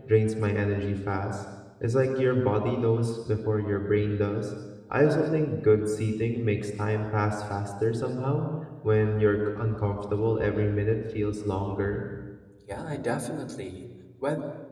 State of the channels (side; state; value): both; identical; correlation 1.00